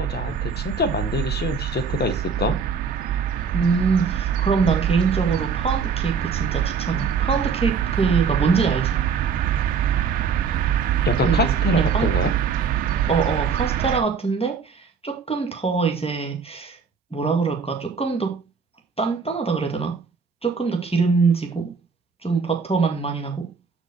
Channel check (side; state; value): left; quieter; 5.4 dB